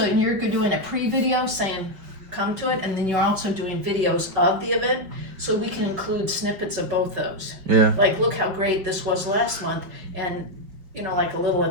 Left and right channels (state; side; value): late; left; 5.4 ms